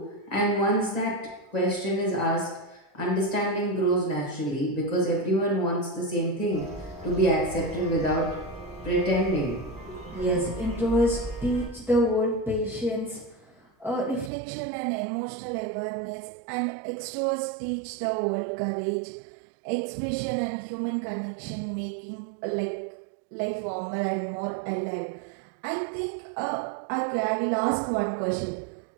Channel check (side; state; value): left; drops out; at 14.3 s